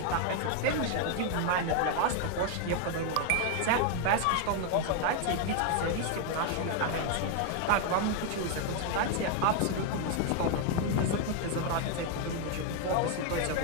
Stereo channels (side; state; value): both; different; correlation 0.01